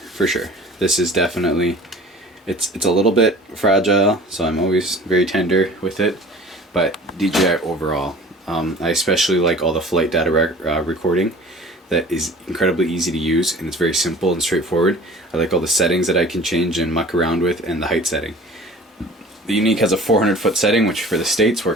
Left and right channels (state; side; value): normal; both; correlation 0.44